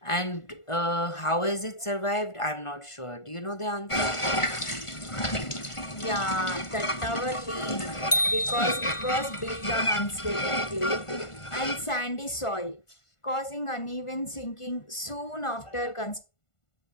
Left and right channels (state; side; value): late; right; 1.5 ms